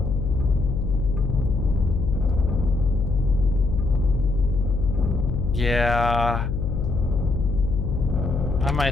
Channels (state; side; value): noise; left; hum, 2 dB below the sound